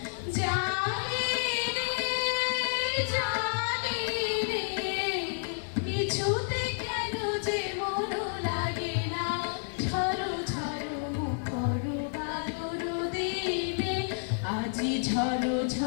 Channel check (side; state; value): right; silent; digital silence